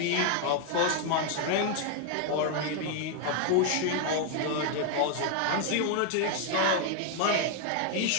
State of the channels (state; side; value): different; both; correlation 0.00